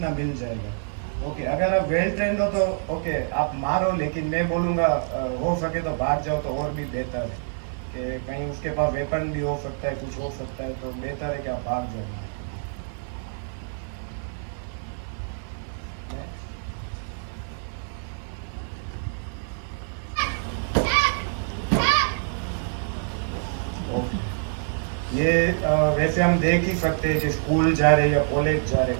मिल जाएगा। ओके, अगर आप वेल ट्रेंड हो तो ओके आप मारो, लेकिन मैं बोलूँगा हो सके तो भाग जाओ तो और भी बेहतर है, कि कहीं उसके पास वेपन भी हो सकता है, कुछ हो सकता है, तो बेहतर है कि आप भाग जाओ। ये वैसे हम देख ही सकते हैं कि स्कूल जा रहे या कॉलेज जा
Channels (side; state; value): left; silent; digital silence